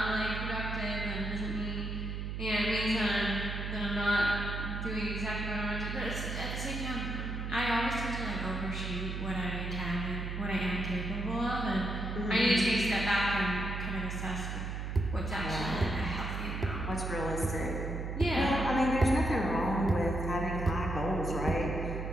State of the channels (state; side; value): noise; right; hum, 4 dB below the sound